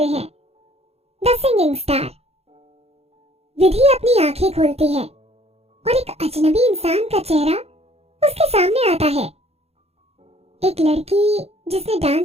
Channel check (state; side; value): late; left; 0.30 ms